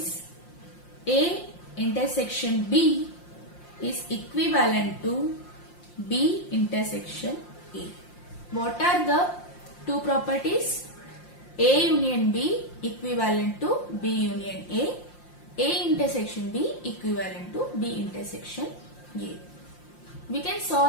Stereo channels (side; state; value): right; late; 5.7 ms